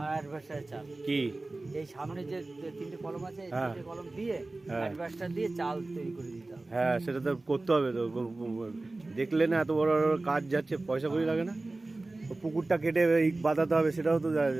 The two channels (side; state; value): left; quieter; 3.1 dB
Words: অ্যাডভার্টার চাল কি এই সামনে যে তিনটে কলম আছে এই তিনটে কলম দিয়ে অ্যাডভার্টার দিয়ে চাল তৈরি করে দিতে হবে। হ্যাঁ সেটা তো করতে হবে তো, দেখলে না এত বড় বড় কাজ যাচ্ছে, পয়সা করি লাগে না? পুকুরটা কেটে ইট বাঁধাতে হবে, সেটাও তো